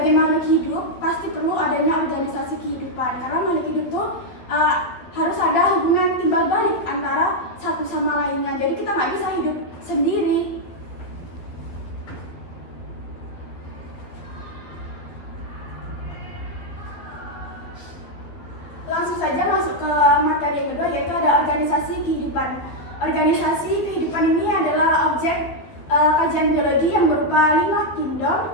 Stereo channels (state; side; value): late; right; 12 ms